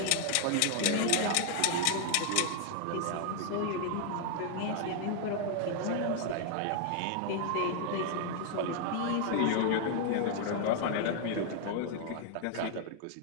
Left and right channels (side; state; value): both; different; correlation 0.00